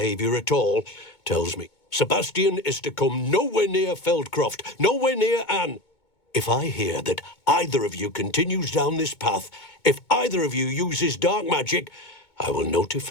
at all tells me Sebastian is to come nowhere near Feldcroft, nowhere near Anne. If I hear that either of you continues down this path, if either of you uses dark magic, I will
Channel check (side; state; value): right; late; 2.2 ms